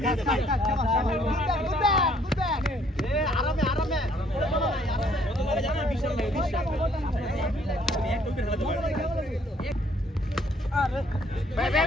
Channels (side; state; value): both; normal; correlation 0.64